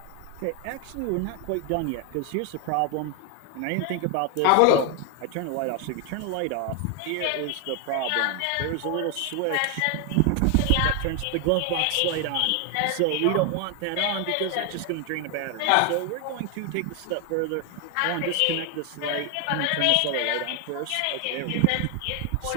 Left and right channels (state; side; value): different; both; correlation 0.01